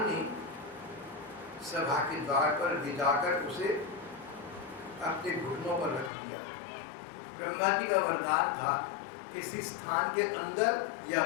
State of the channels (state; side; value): drops out; right; at 6.1 s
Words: ने सभा के द्वार पर भिजाकर उसे अपने घुटनों पर रख दिया। ब्रह्मा जी का वरदान था, किसी स्थान के अंदर या